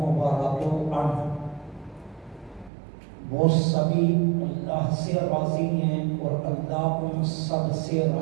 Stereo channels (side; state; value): left; drops out; at 2.7 s